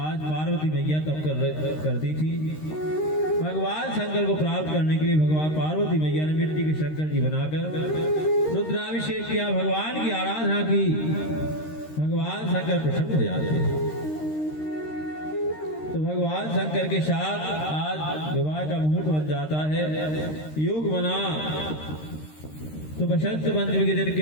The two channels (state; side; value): late; right; 13 ms